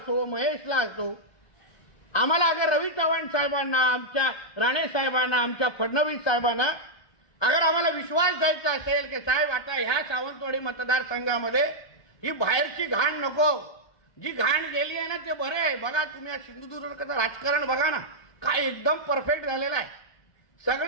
महेशला असो, आम्हाला अगर रवी चव्हाण साहेबांना, आमच्या राणे साहेबांना, आमच्या फडणवीस साहेबांना अगर आम्हाला विश्वास द्यायचा असेल की साहेब आता ह्या सावंतवाडी मतदारसंघामध्ये ही बाहेरची घाण नको, जी घाण गेली आहे ना ते बरं आहे. बघा तुम्ही सिंधुदुर्गाचं राजकारण बघा ना, काय एकदम परफेक्ट झालेलं आहे.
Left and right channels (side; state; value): right; late; 1.2 ms